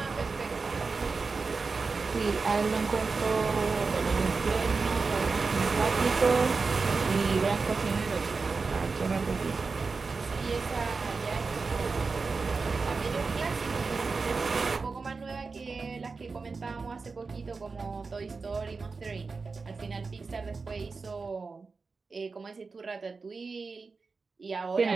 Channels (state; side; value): quieter; left; 4.4 dB